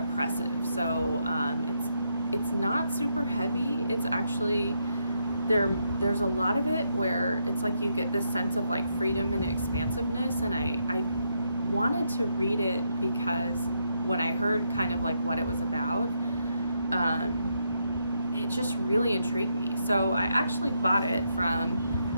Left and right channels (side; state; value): both; inverted; correlation -0.79